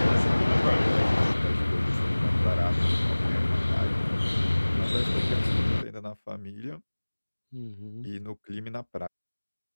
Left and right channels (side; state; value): both; inverted; correlation -1.00